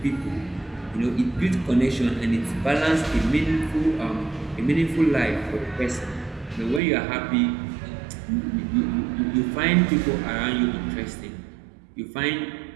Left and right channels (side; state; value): left; drops out; at 6.8 s